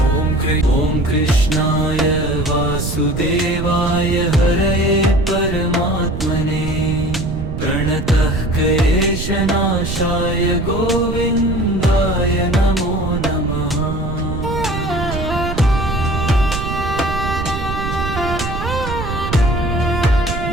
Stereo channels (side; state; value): right; noise; rumble, 5 dB below the sound